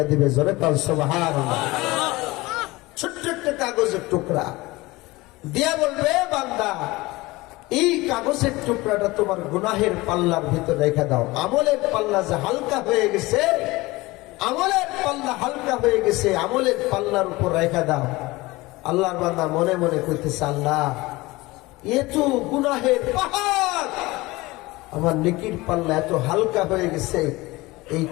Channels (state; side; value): quieter; right; 21.0 dB